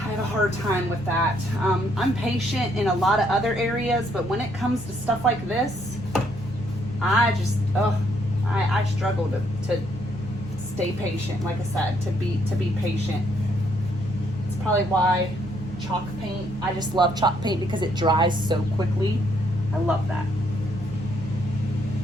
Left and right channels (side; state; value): left; noise; rumble, 21 dB below the sound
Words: have a hard time with that. I'm patient in a lot of other areas, but when it comes to stuff like this, I just, I struggle to stay patient. Like I said, to be patient. It's probably why chalk paint, I just love chalk paint because it dries so quickly. I love that.